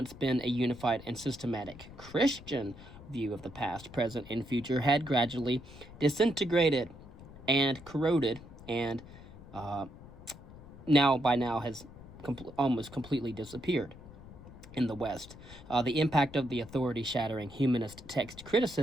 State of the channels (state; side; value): noise; left; rumble, 17 dB below the sound